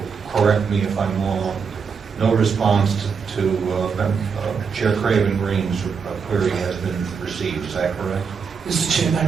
correct me if I'm wrong, no response to Chair Craven Green's query has been received. Is that correct? Mr. Chair, that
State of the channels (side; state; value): left; quieter; 5.9 dB